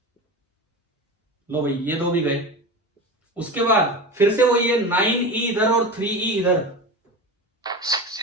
लो भाई, ये 2 भी गए। उसके बाद फिर से वही है, 9E इधर और 3E इधर,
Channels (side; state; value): both; normal; correlation 0.27